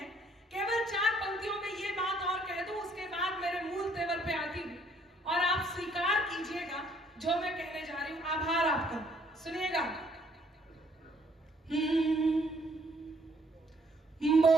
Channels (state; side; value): normal; both; correlation 0.64